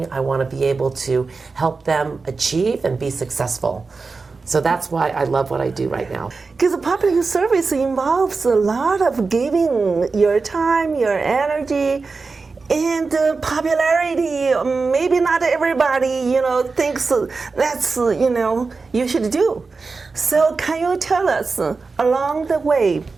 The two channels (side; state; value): left; quieter; 4.3 dB